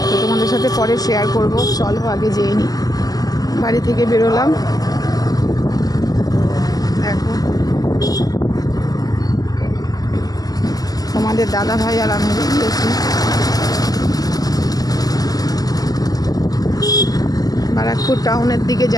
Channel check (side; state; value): right; late; 0.18 ms